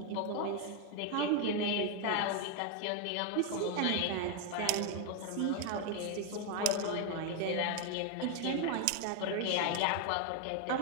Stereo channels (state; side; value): different; both; correlation 0.01